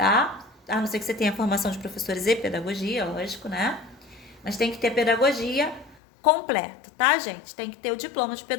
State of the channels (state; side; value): drops out; right; at 6.0 s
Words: A não ser que você tenha formação de professores e pedagogia, lógico, né? Mas tem que ter pedagogia completa, tá, gente? Tem que ter o diploma de